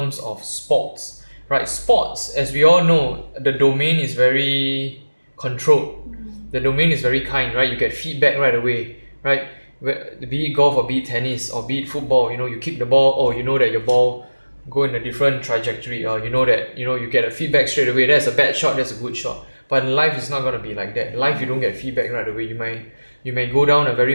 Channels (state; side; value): inverted; both; correlation -1.00